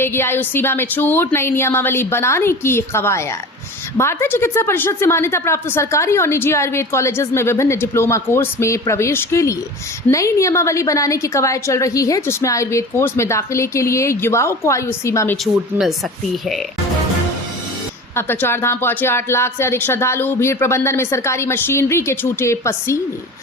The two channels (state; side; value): normal; both; correlation 0.35